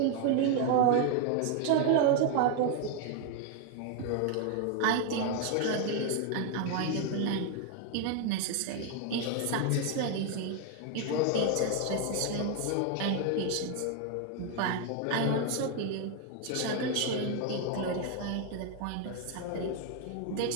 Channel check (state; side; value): different; both; correlation 0.01